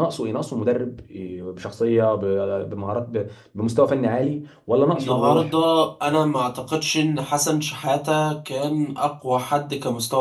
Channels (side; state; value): both; identical; correlation 1.00